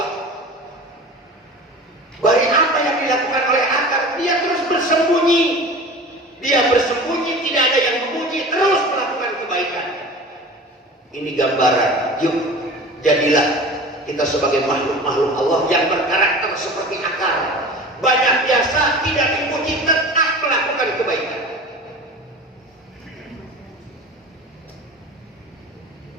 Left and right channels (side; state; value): both; normal; correlation 0.37